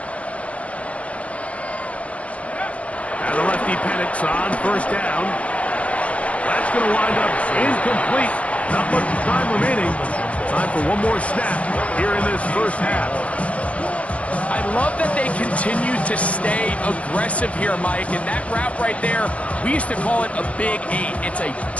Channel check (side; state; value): right; late; 0.064 ms